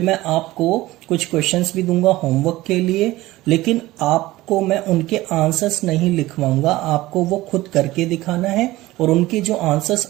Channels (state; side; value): quieter; left; 17.8 dB